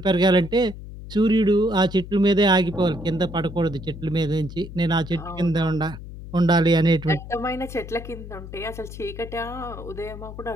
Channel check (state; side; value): noise; left; hum, 12 dB below the sound